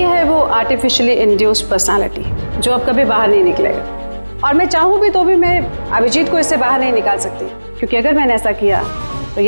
वो आर्टिफिशियली इंड्यूस्ड पर्सनालिटी जो अब कभी बाहर नहीं निकलेगा। और मैं चाहूँ भी तो भी मैं अभिजीत को इससे बाहर नहीं निकाल सकती, क्योंकि अगर मैंने ऐसा किया तो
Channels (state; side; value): inverted; both; correlation -1.00